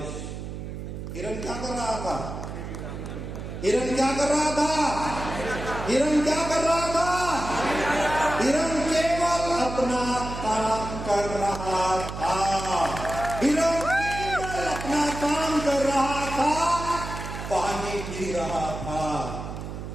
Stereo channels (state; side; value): noise; right; hum, 8 dB below the sound